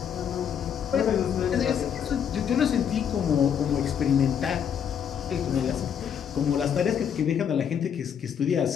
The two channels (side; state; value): right; quieter; 8.2 dB